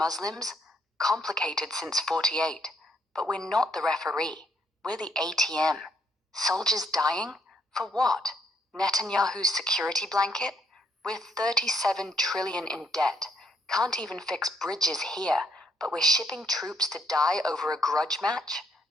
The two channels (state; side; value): normal; both; correlation 0.70